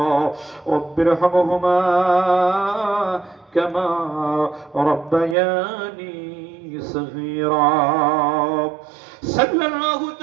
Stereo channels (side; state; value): left; drops out; at 5.4 s